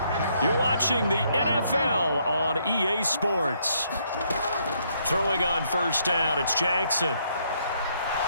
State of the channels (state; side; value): inverted; both; correlation -0.71